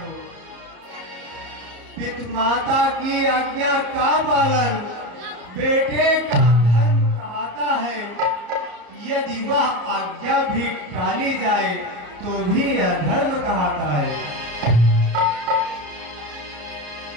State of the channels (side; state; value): left; late; 34 ms